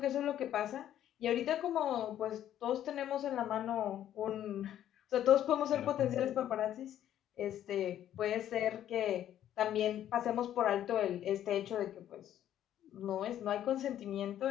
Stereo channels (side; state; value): right; quieter; 11.3 dB